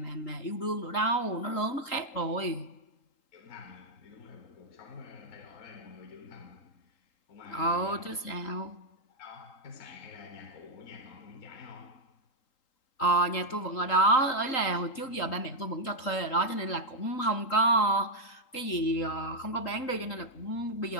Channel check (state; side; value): late; right; 3.8 ms